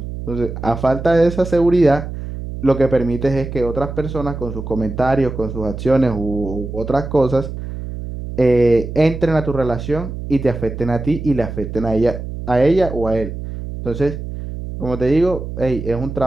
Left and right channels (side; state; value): right; noise; hum, 8 dB below the sound